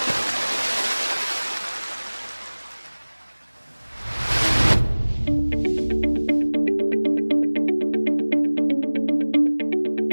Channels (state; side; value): inverted; both; correlation -1.00